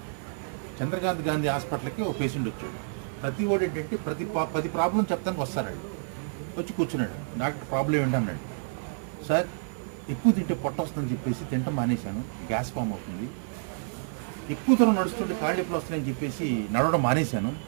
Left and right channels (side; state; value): left; silent; 56 dB below the other